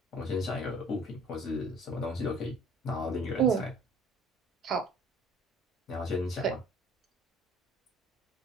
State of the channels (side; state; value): both; normal; correlation 0.51